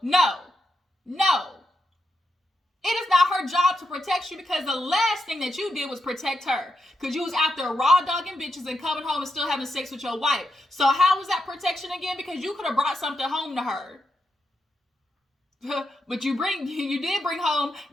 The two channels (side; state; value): both; normal; correlation 0.85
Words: It is not her job to protect you because the last thing that you did was protect her. Because you was out there raw dogging bitches and coming home and still having sex with your wife. So how was that protection again? Because you could have brought something home to her. But you did bring home